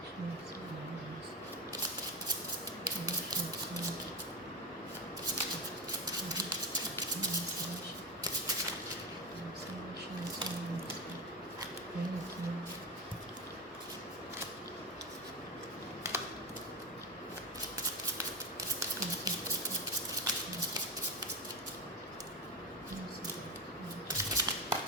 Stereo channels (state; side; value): normal; both; correlation 0.18